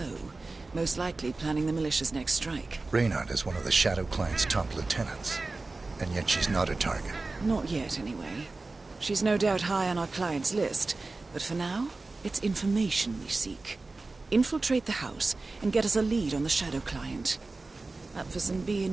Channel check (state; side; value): quieter; left; 3.5 dB